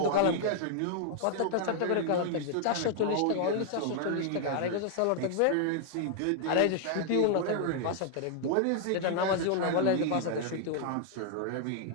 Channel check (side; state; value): both; different; correlation 0.00